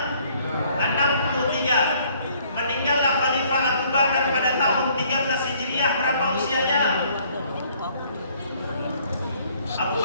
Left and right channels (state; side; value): inverted; both; correlation -0.62